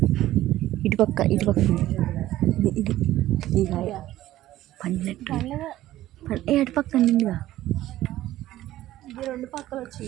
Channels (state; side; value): quieter; left; 14.7 dB